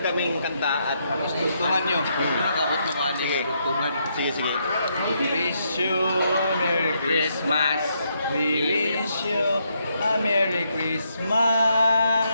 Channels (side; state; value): both; inverted; correlation -0.77